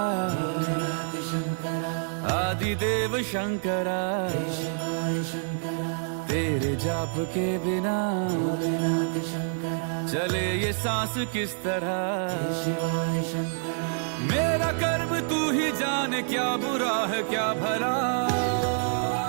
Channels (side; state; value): left; silent; 59 dB below the other